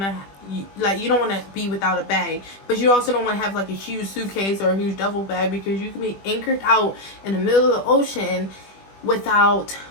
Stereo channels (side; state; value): right; late; 20 ms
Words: to be without a bag, but you also don't want to have like a huge suitcase or a huge duffel bag, because you can be anchored out in the middle of the ocean without,